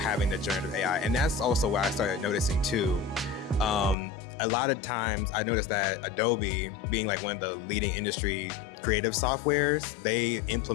the generative AI. And that's also what I started noticing too. A lot of times I noticed that Adobe, being like one of the leading industry creative softwares, they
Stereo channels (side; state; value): right; drops out; at 4.0 s